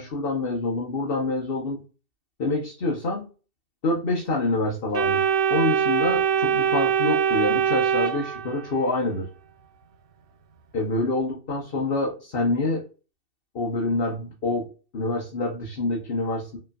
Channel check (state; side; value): late; right; 2.7 ms